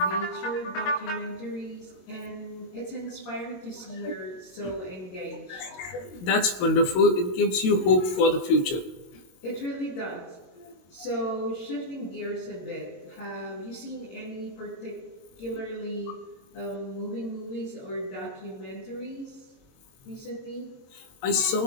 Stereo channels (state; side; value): late; right; 22 ms